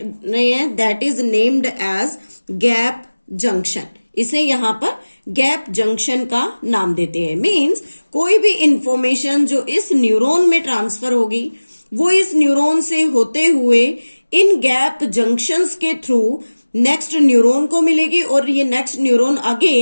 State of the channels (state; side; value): inverted; both; correlation -1.00